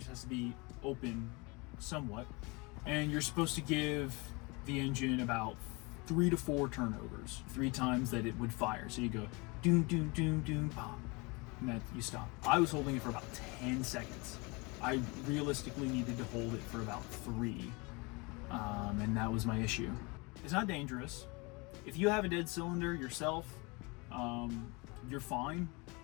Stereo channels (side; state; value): right; quieter; 27.6 dB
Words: has to be open somewhat. And you're supposed to give the engine about 3 to 4 turnovers, 3 times that it would fire. So you go doom, doom, doom, doom, pop, and then you stop. I was holding it for about 10 seconds. I realistically needed to hold it for about 3, and that was my issue. It's not dangerous. If you have a dead cylinder yourself, you're fine.